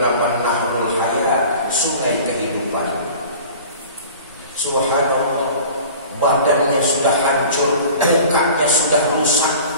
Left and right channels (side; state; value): both; inverted; correlation -0.42